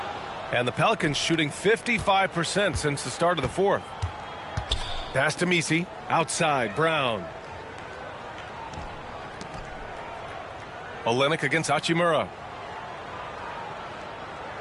And the Pelicans shooting 55% since the start of the fourth. Pass to Misi. Outside, Brown. Olynyk against Hachimura.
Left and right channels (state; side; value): identical; both; correlation 1.00